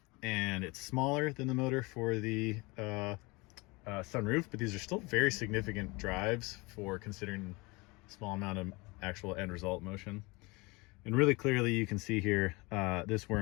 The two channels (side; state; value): right; quieter; 25.2 dB